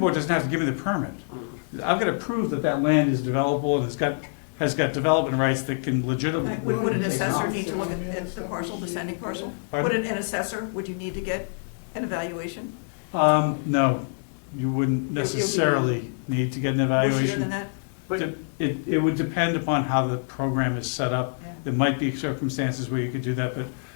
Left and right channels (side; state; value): right; silent; digital silence